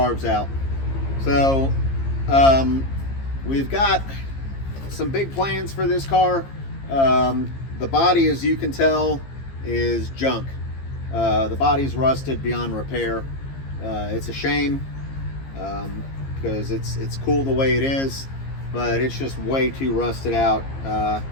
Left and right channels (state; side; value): late; right; 15 ms